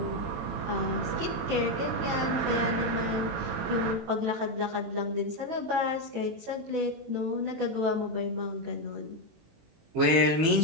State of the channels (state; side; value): late; left; 18 ms